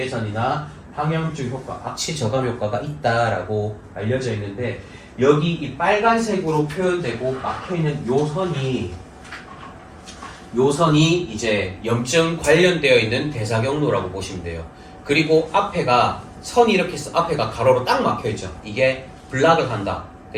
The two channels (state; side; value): identical; both; correlation 1.00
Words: 항염증 효과, 악취 저감 효과가 있다라고 알려져 있는데 여기 이 빨간색으로 표현되고 막혀있는 요선이 이제 염증 관련되어 있는 대사 경로라고 보시면 돼요. 그리고 앞에가 선이 이렇게 앞에가 가로로 딱 막혀있죠. 이게 블락을 한다.